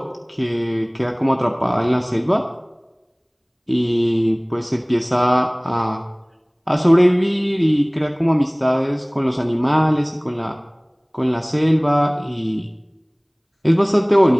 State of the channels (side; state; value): both; identical; correlation 1.00